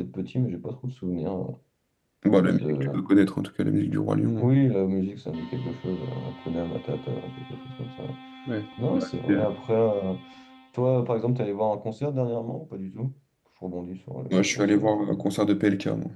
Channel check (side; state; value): both; identical; correlation 1.00